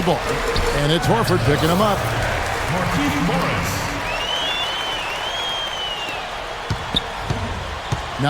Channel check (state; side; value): identical; both; correlation 1.00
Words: ball. And it's Horford picking him up. Markieff Morris.